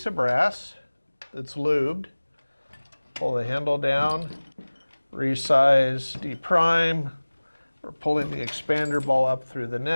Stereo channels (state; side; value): inverted; both; correlation -1.00